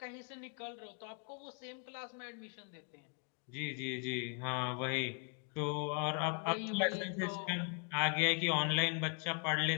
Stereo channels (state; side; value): quieter; right; 38.7 dB